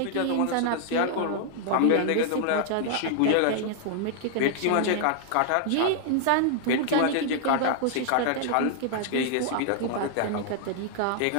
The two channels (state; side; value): different; both; correlation -0.01